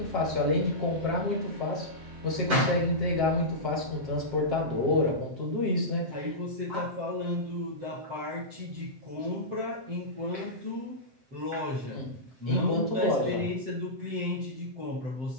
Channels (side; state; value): left; late; 7.7 ms